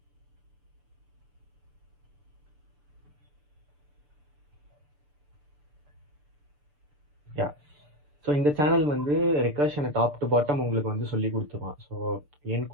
ஸோ இந்த சேனல் வந்து ரெக்கர்ஷனை டாப் டு பாட்டம் உங்களுக்கு வந்து சொல்லி கொடுத்துருவான். ஸோ என்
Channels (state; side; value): late; left; 6.8 ms